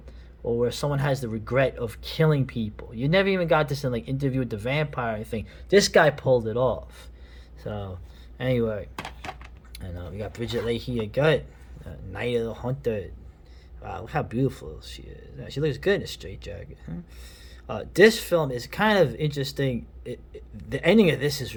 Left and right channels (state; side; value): identical; both; correlation 1.00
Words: or where someone has the regret of killing people. You never even got this in like Interview with the Vampire or anything. This guy pulled it off. So anyway, and we got Bridget Leahy again, Night of the Hunter. Wow, look how beautiful she is. She looks good in a straitjacket. Huh? This film is kind of interesting. The ending of this is